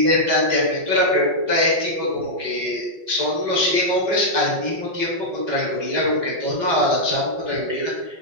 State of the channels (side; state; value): left; late; 5.5 ms